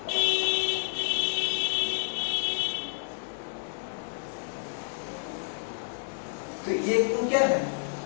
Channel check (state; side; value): silent; right; 58 dB below the other